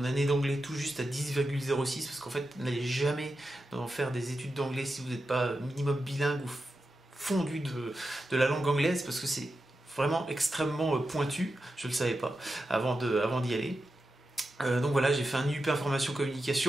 année d'anglais tout juste à 10,06 parce qu'en fait n'allez jamais faire des études d'anglais si vous n'êtes pas minimum bilingue ou fondu de la langue anglaise, parce que c'est vraiment extrêmement pointu. Je ne le savais pas avant d'y aller. Donc voilà, j'ai fait un IUP Information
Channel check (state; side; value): normal; both; correlation 0.90